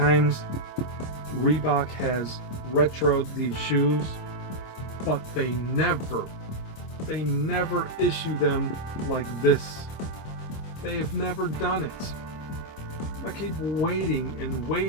Reebok has retroed these shoes, but they never issue them like this? They've never done it. I keep waiting and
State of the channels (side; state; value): right; late; 26 ms